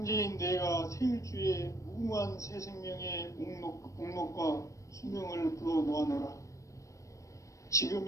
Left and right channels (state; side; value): late; right; 0.15 ms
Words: 내가 태일주의 무궁한 새 생명의 목록과 수명을 불어놓아노라. 지금